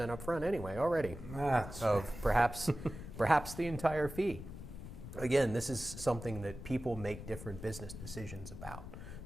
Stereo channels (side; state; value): left; noise; rumble, 11 dB below the sound